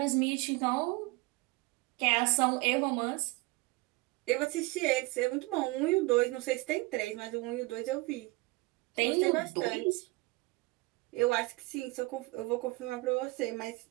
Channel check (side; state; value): left; quieter; 23.1 dB